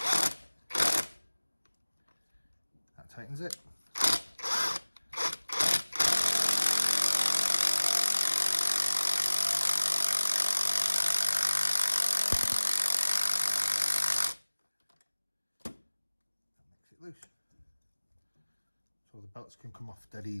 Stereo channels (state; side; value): inverted; both; correlation -1.00